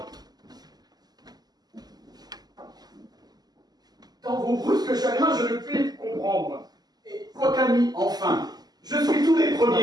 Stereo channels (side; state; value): left; late; 0.20 ms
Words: Dans vos brusques chagrins, je ne puis comprendre. Et votre ami, enfin, je suis tous les